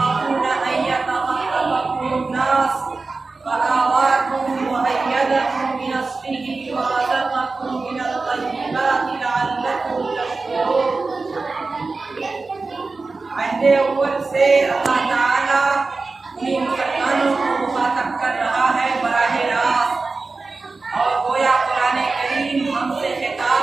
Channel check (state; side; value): quieter; left; 3.9 dB